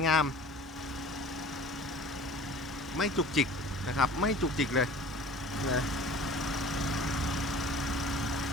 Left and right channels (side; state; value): both; normal; correlation 0.45